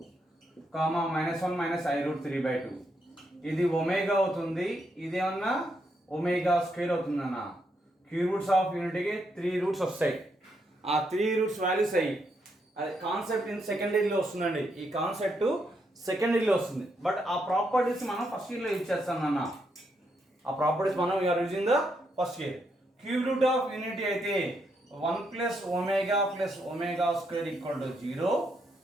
-1 minus I root 3/2. ఇది omega అవుతుంది, ఇది ఏమన్నా omega square అవుతుందన్న. Cube roots of యూనిటీకి 3 roots వస్తాయి. ఆ 3 రూట్స్ వాల్యూస్ అయ్యి అది కాన్సెప్ట్ ఇన్ సెకండ్ ఇయర్లో వస్తుందండి. ఈ కాన్సెప్ట్ సెకండ్ ఇయర్లో వస్తుంది, బట్ ఆ ప్రాపర్టీస్ మనం ఫస్ట్ ఇయర్లో యూజ్ చేస్తాం అన్న. ఆ ప్రాపర్టీస్ మనం you're using the first year. Cube root of unity అయితే 1 plus omega square equal to 0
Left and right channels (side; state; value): both; normal; correlation 0.79